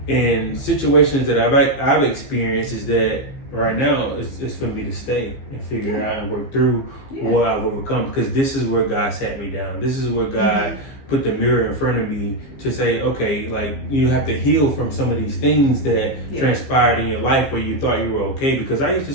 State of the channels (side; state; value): right; late; 15 ms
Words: in situations that I've experienced is that right now it's for me to stay and figure it out and work through what I've overcome, because this is where God sat me down. This is where God put the mirror in front of me to say, okay, like, you have to heal from some of these things that transpired in your life where you thought you were okay. Because I used to